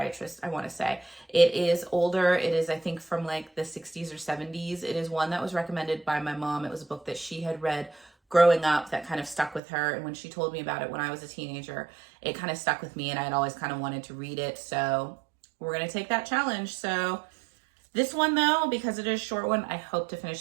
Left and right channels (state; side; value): drops out; left; at 9.6 s